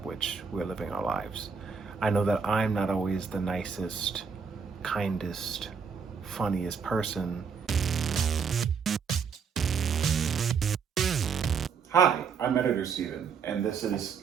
which we're living our lives. I know that I'm not always the nicest, kindest, funniest person. Hi, I'm Editor Steven, and this is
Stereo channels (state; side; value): quieter; left; 6.0 dB